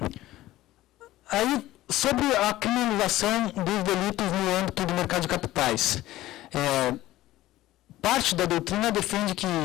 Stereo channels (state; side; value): quieter; right; 15.9 dB